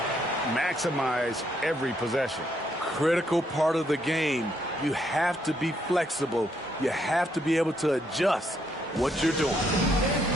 maximize every possession. Critical part of the game. You have to be flexible. You have to be able to adjust what you're doing.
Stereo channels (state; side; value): normal; both; correlation 0.74